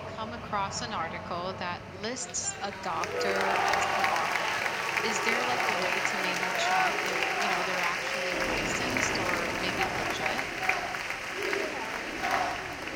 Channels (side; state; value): both; identical; correlation 1.00